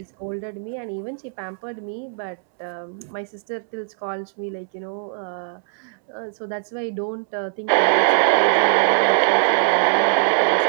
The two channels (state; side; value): silent; left; 64 dB below the other